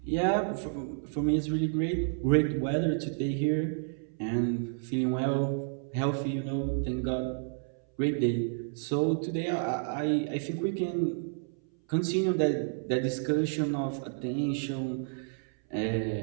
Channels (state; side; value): silent; left; 57 dB below the other